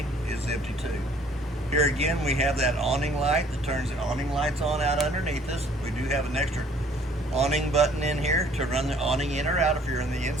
is empty too. Here again, we have that awning light that turns the awning lights on out underneath us. We do have an extra awning button in here to run the awning in or out if you're in the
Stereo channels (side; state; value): both; normal; correlation 0.57